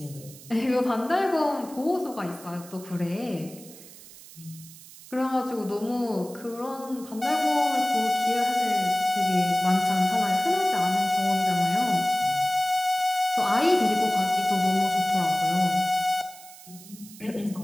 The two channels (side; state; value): right; noise; hiss, 19 dB below the sound